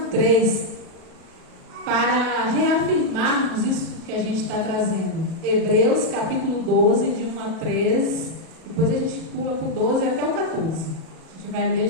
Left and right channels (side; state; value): left; late; 37 ms